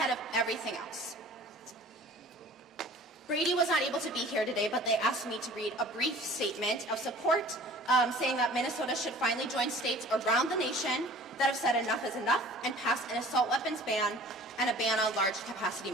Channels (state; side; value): normal; both; correlation 0.46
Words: of everything else. Brady was not able to be here today, but they asked me to read a brief statement of support saying that Minnesota should finally join states around the nation that have said enough is enough and pass an assault weapons ban and a ban on large capacity